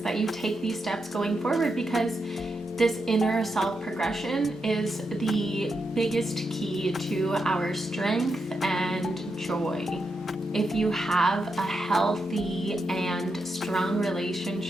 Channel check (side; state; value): both; normal; correlation 0.85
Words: that you take these steps going forward, because this inner self progression is the biggest key to our strength and joy. If you have a healthy and strong